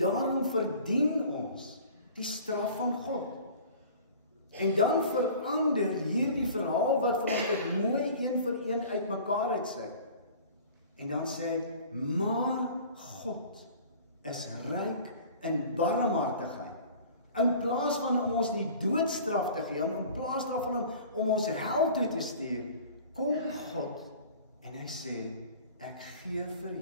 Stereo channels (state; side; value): inverted; both; correlation -0.44